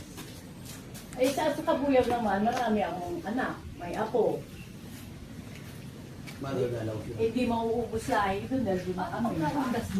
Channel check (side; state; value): both; identical; correlation 1.00